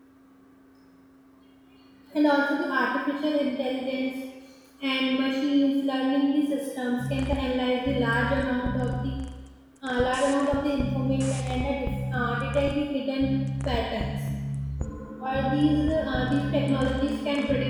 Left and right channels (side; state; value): both; identical; correlation 1.00